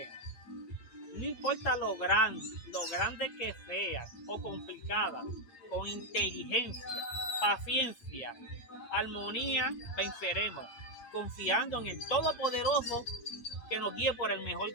No importa lo grande que sea o complicada, con inteligencia, paciencia, armonía, venceremos, confiando en el Todopoderoso que nos guíe por el mejor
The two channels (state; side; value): late; right; 8.5 ms